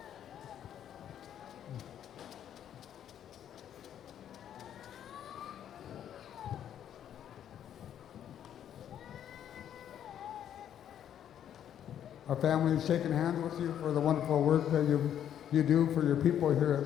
Our family is shaking hands with you for the wonderful work that you do for your people here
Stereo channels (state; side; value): quieter; right; 10.0 dB